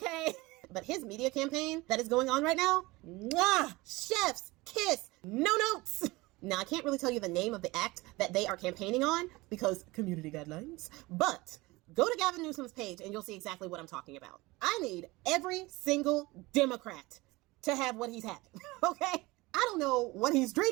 But his media campaign that is going on right now, mwah, chef's kiss, no notes. Now, I can't really tell you the name of the act that they are campaigning on because community guidelines, but go to Gavin Newsom's page and you'll see exactly what I'm talking about. I need every single Democrat to have what he's having, okay? I don't know what he's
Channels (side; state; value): left; quieter; 21.8 dB